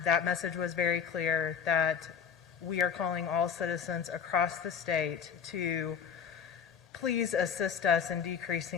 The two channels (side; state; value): right; quieter; 7.2 dB